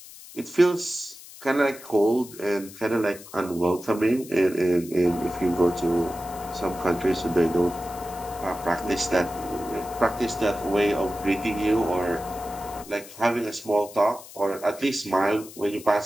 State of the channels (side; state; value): left; noise; hiss, 17 dB below the sound